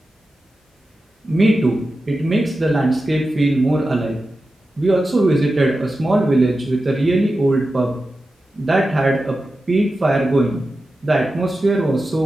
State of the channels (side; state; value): both; normal; correlation 0.92